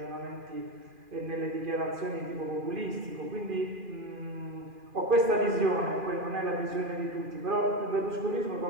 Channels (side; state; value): left; late; 2.4 ms